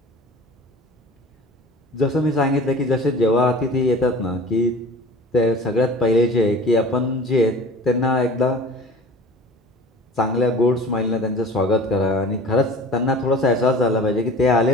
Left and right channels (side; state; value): both; normal; correlation 0.41